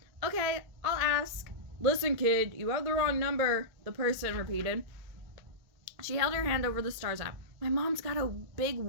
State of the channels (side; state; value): left; late; 1.9 ms